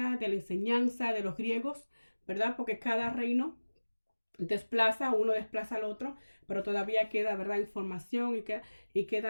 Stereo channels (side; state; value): both; inverted; correlation -1.00